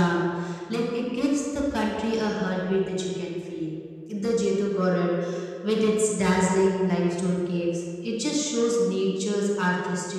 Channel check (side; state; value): both; identical; correlation 1.00